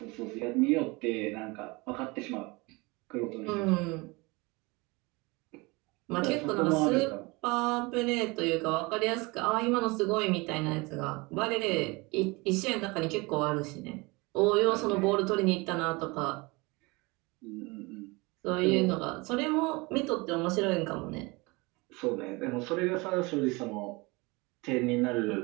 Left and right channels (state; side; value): quieter; left; 25.3 dB